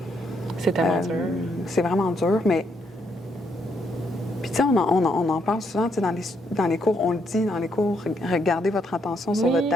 C'est tellement dur. C'est vraiment dur, mais... Puis tu sais, on en parle souvent, tu sais, dans les cours, on le dit dans les cours, regardez votre attention sur votre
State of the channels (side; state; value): both; normal; correlation 0.75